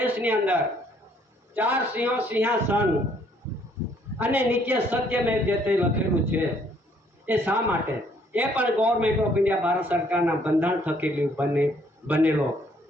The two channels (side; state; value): both; normal; correlation 0.65